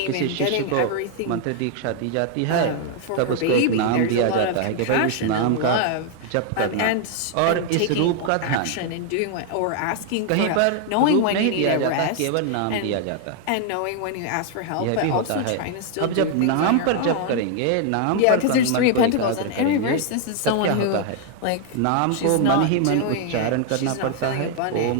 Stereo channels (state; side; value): different; both; correlation 0.00